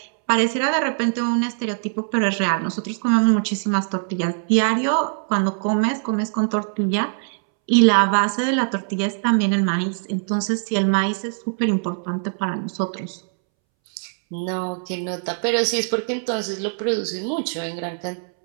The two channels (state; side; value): silent; left; 64 dB below the other